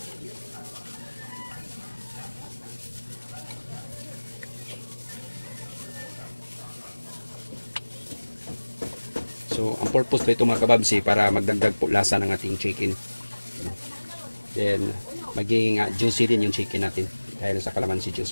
So ang purpose po ito mga kababs para magdagdag po lasa ng ating chicken. Then maging juicy din yung chicken natin dahil sa calamansi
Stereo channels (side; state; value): both; inverted; correlation -1.00